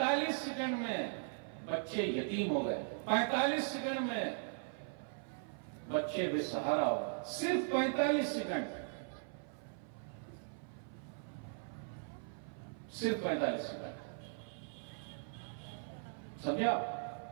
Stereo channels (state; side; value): silent; left; 52 dB below the other